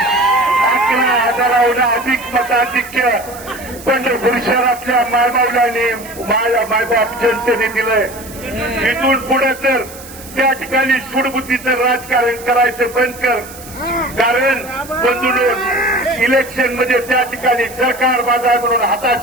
11,000 अधिक मताधिक्य पंढरपूर शहरातल्या मायबावलांनी मायबाप जनतेने दिलंय. इथून पुढे तर त्या ठिकाणी सूडबुद्धीचं राजकारण करायचं बंद कर. कारण बंधून इलेक्शनमध्ये त्या ठिकाणी सरकार बाजार म्हणून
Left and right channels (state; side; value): noise; right; hiss, 17 dB below the sound